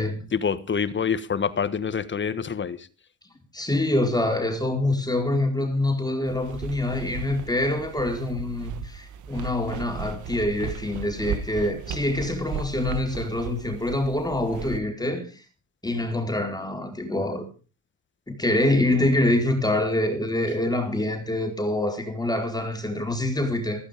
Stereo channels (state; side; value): normal; both; correlation 0.58